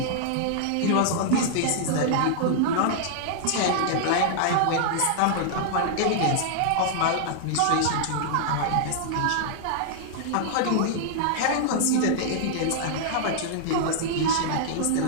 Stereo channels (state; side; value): different; both; correlation -0.01